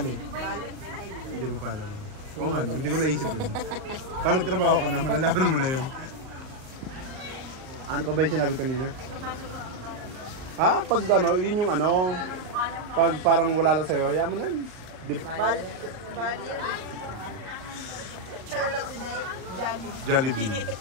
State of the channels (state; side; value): late; left; 38 ms